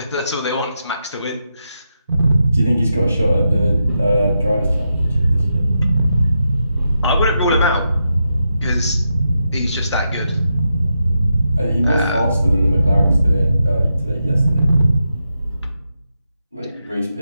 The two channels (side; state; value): both; inverted; correlation -0.85